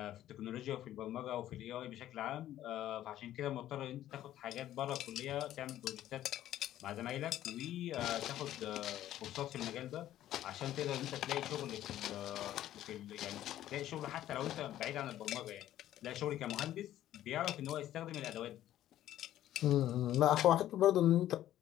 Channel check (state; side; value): quieter; right; 12.8 dB